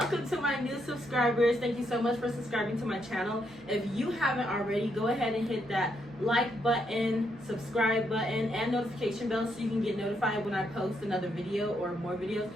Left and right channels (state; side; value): noise; right; hum, 26 dB below the sound